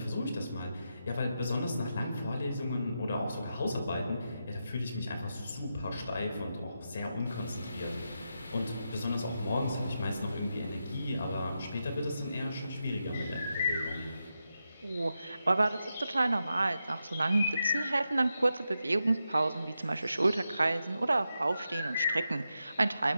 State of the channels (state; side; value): inverted; both; correlation -0.87